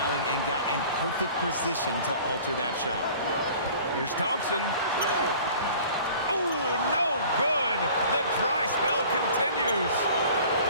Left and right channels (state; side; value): inverted; both; correlation -0.47